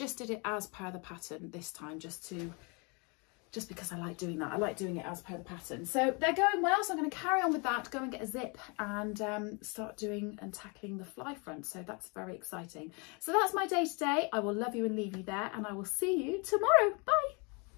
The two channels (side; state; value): right; quieter; 31.8 dB